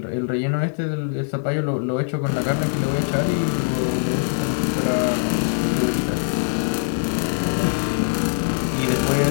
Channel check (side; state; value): right; silent; 64 dB below the other